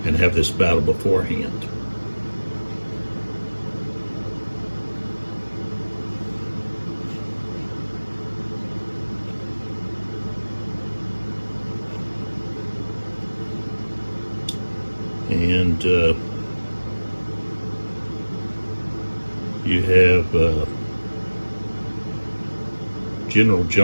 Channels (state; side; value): inverted; both; correlation -1.00